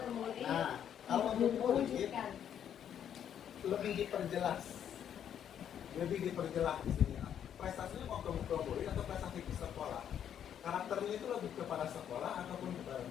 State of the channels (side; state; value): right; quieter; 9.3 dB